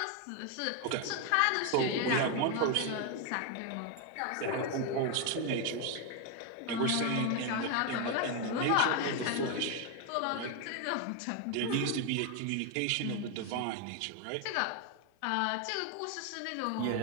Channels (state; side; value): different; both; correlation 0.01